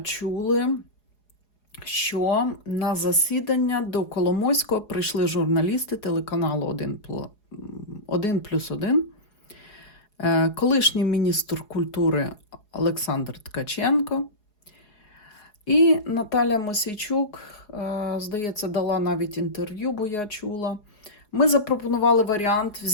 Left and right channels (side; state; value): right; late; 4.8 ms